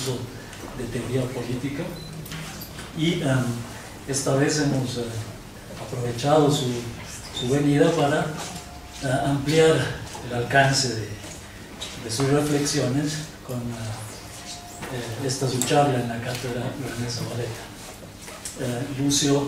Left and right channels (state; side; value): identical; both; correlation 1.00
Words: de teoría política, y esta vez hemos aprovechado su venida para ampliar el alcance de sus reflexiones con esta su charla en la cátedra René Zabaleta.